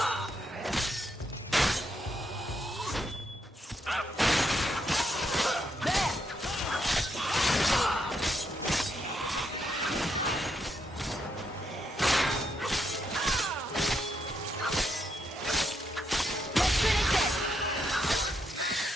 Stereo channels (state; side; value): normal; both; correlation 0.78